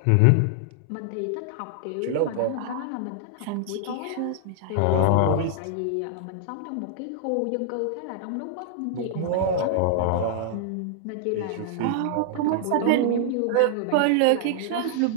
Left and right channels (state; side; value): different; both; correlation -0.01